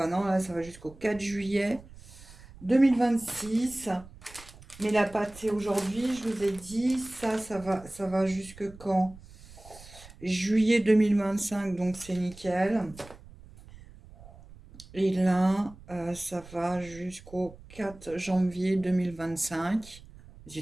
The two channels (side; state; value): right; noise; rumble, 20 dB below the sound